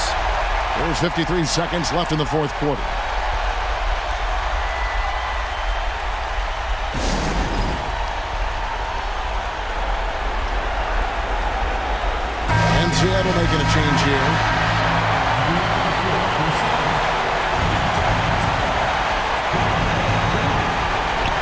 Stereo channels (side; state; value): both; identical; correlation 1.00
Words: There's 53 seconds left in the fourth quarter. And Seattle making a change here.